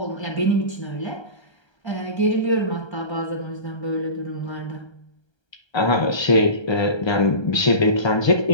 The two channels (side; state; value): right; late; 1.3 ms